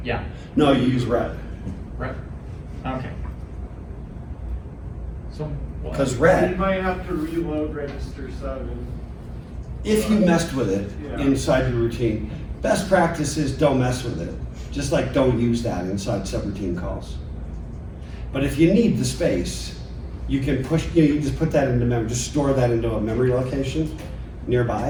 Yeah, No, you use red. right. Okay. So what? Because You red, might have to reload register 7. if you messed with it Yeah. inside your routine, best practice is don't mess with it. Just like don't use that inside subroutine calls. But if you need the space, you can push, you just put that into memory, just store that into a memory location nearby,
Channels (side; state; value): both; identical; correlation 1.00